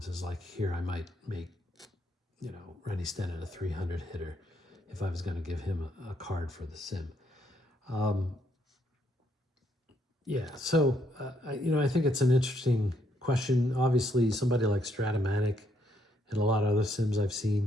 Like here, I might make Randy Stenton a 300 hitter if I was going to give him a card for the sim. So I think it's an interesting question. Obviously, somebody like Stratomatic and a lot of other sims I've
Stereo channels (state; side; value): normal; both; correlation 0.73